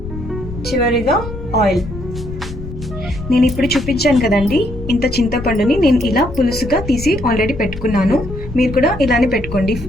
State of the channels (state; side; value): noise; left; rumble, 10 dB below the sound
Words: చివరిగా ఆయిల్. నేను ఇప్పుడు చూపించాను కదండి, ఇంత చింతపండుని నేను ఇలా పులుసుగా తీసి ఆల్రెడీ పెట్టుకున్నాను. మీరు కూడా ఇలానే పెట్టుకోండి.